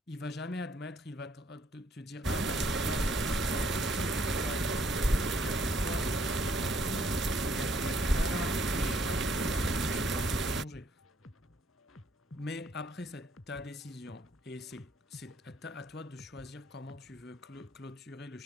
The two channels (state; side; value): normal; both; correlation 0.66